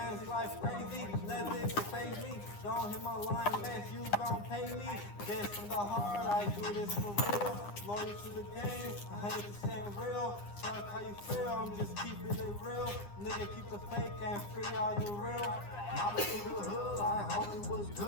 life crazy, nothing can phase me. Don't hit my line unless you gon' pay me. This from the heart, I do this for real. Loyal to the game, 100% real. Fuck how you feel, I'm just keeping it real. Nigga, keep the fake and free all the real. Mama through the hood, like homie was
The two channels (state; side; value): late; right; 9.8 ms